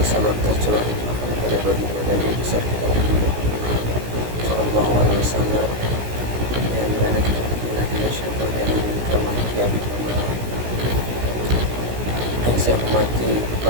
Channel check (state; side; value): late; left; 16 ms